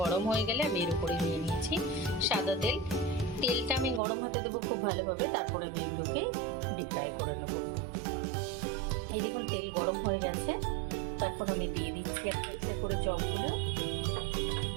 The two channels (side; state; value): left; drops out; at 4.0 s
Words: গরম হয়ে গেলে আমি এর উপরে নিয়ে নিয়েছি সাদা তেল। তেলটা আমি গরম হতে দেবো খুব ভালোভাবে, তারপরে আমি এগুলোকে ডিপ ফ্রাই করে নেব। এই দেখুন তেল গরম হয়ে গেছে, তো এখন আমি দিয়ে দিচ্ছি একটা একটা করে চপগুলো।